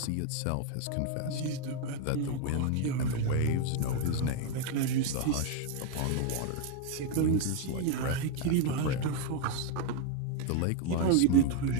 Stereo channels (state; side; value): different; both; correlation 0.01